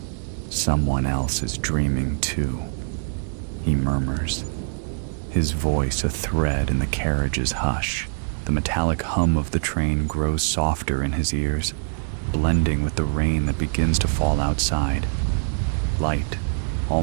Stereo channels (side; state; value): left; silent; digital silence